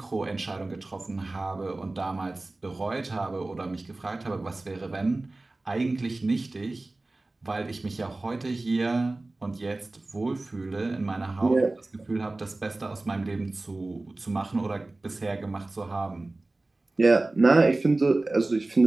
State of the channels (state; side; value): quieter; left; 3.0 dB